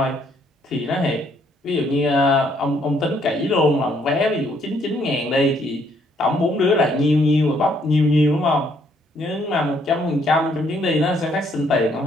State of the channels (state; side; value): normal; both; correlation 0.68